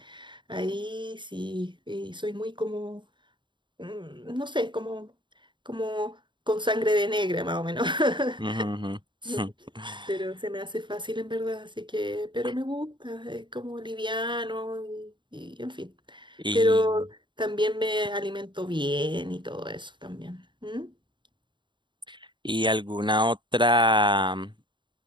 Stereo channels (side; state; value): left; late; 0.23 ms